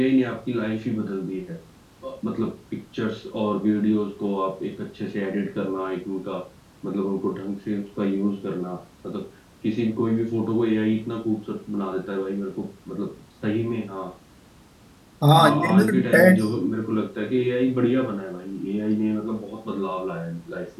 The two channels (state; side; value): identical; both; correlation 1.00